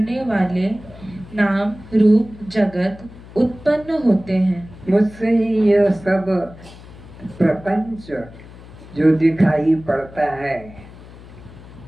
वाले नाम रूप जगत उत्पन्न होते हैं। मुझसे ही यह सब प्रपंच जो दिखाई पड़ता है,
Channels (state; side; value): noise; left; hum, 19 dB below the sound